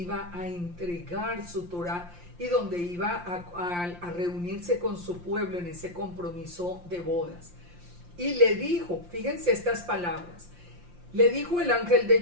a entregar su Torah y donde iba a reunirse con su pueblo en ese compromiso de bodas. Y le dijo, fíjense estas palabras, Le dijo el ángel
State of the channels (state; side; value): late; left; 5.7 ms